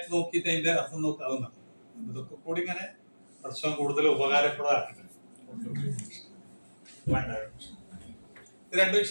നോക്കിയിട്ട് അതിന്റെ അർത്ഥം നോക്കുക അതും നടക്കും. ഇതൊക്കെ കൂടി ഇങ്ങനെ പ്രശ്നം കൂടുതൽ ഉപകാരപ്രദമാക്കട്ടെ. ഇത് രണ്ടു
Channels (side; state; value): both; inverted; correlation -1.00